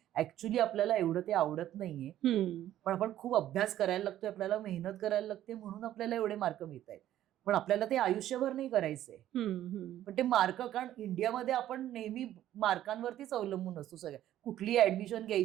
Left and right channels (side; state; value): left; quieter; 12.5 dB